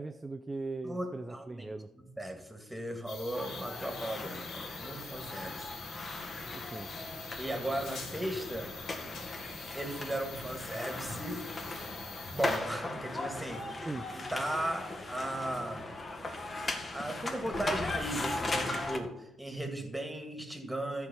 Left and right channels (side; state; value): both; normal; correlation 0.86